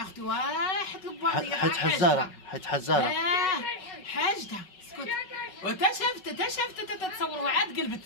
اختي واحد الباطيه حيت حزاره حاجتها. اسكت. وتا شافت تتصوروها عاد قلبت.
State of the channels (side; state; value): right; late; 5.4 ms